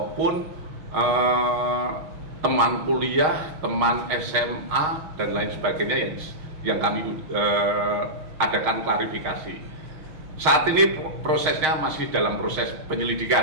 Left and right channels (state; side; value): late; left; 6.4 ms